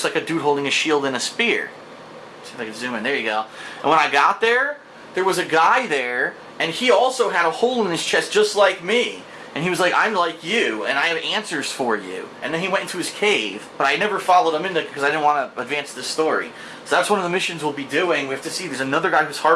like a dude holding a shield and a spear. See if I can zoom in. There you go. And when I got there, there was a guy there, and he also had a hole in his chest just like me. And he was like, I'm like you, and I have answers for you. And then he went into his cave, but I never followed him in there because I didn't want to advance the story. So that's one of the missions we'll be doing. We have to see, there's another guy whose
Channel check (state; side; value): identical; both; correlation 1.00